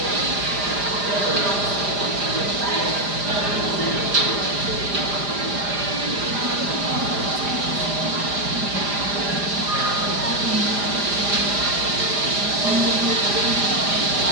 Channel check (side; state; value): left; late; 4.9 ms